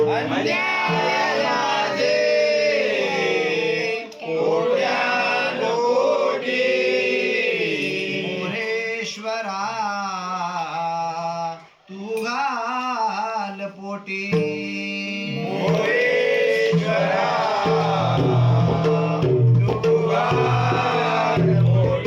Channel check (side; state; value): both; identical; correlation 1.00